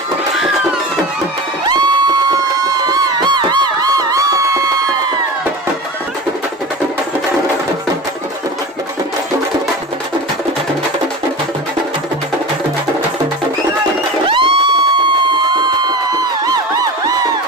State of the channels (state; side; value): normal; both; correlation 0.31